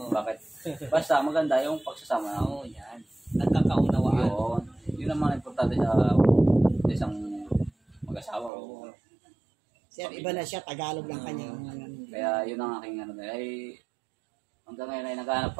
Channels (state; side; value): drops out; left; at 8.5 s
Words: Bakit? Basta maganda yung pagsasama. Yan. Nagkakaunawaan. Yun ang mga importante sa isang mag-asawa. Sir, iba na siya, Tagalog lang kanya. Kaya yun ang aking ay hanggang ngayon ay naghahanap